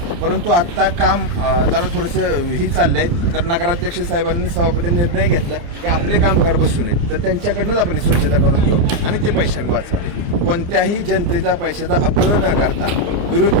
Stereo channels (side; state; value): left; late; 29 ms